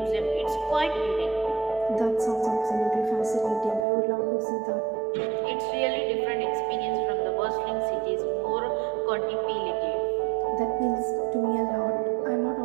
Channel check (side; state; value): left; drops out; at 3.9 s